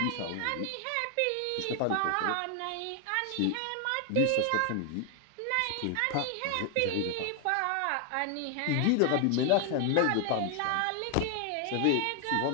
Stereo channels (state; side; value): different; both; correlation 0.00